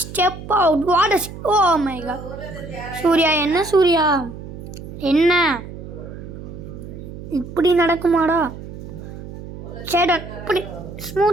Step out. What oh my god. Surya என்ன இப்படி நடக்குமாடா? சேடன் இப்படி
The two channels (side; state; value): right; noise; hum, 12 dB below the sound